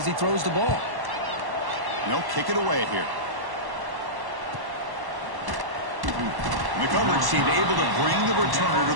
he throws the ball. They'll kick it away here. And the coverage team able to bring the returner to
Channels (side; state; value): left; late; 1.1 ms